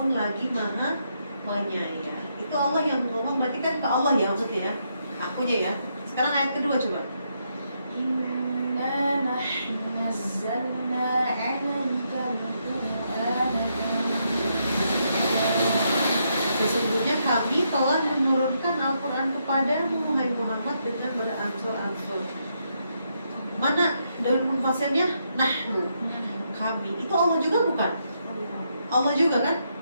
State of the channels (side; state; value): both; inverted; correlation -0.79